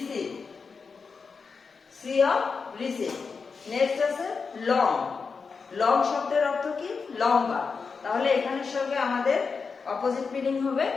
সি অফ রিসিভ। নেক্সট আছে লং। লং শব্দের অর্থ কি? লম্বা। তাহলে এখানের সঙ্গে আমাদের অপোজিট মিনিং হবে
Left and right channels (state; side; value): quieter; right; 5.1 dB